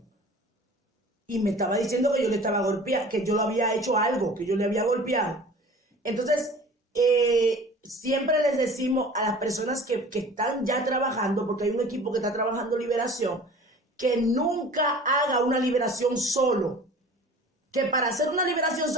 Y me estaba diciendo que yo le estaba golpeando, que yo lo había hecho algo, que yo le había golpeado. Entonces, siempre les decimos a las personas que están ya trabajando, porque hay un equipo que está trabajando liberación, que nunca haga una liberación solo. Que para hacer una liberación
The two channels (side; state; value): both; normal; correlation 0.43